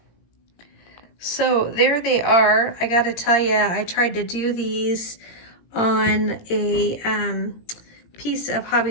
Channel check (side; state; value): right; late; 18 ms